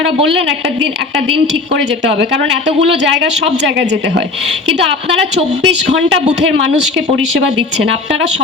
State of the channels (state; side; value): quieter; right; 3.5 dB